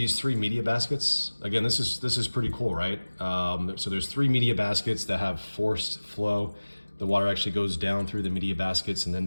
3 media baskets. Again, this is pretty cool, right? So there's 3 media baskets that have forced flow. The water actually goes down through the media baskets and then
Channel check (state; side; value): inverted; both; correlation -1.00